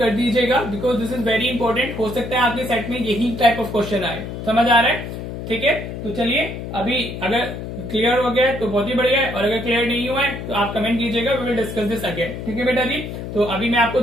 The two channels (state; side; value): noise; left; hum, 8 dB below the sound